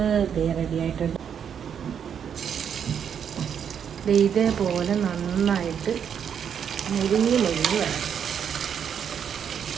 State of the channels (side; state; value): left; quieter; 8.0 dB